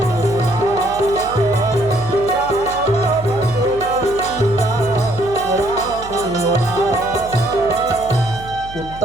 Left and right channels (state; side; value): noise; right; hum, 15 dB below the sound